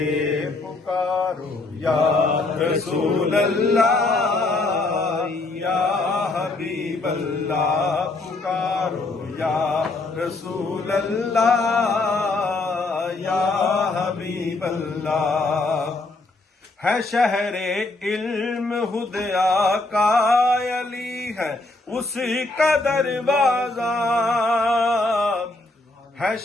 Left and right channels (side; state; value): right; quieter; 3.1 dB